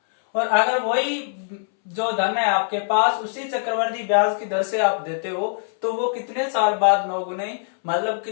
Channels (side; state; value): right; silent; 64 dB below the other